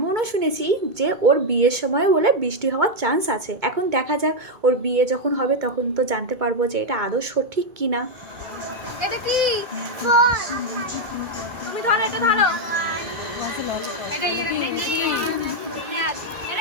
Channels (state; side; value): late; left; 2.2 ms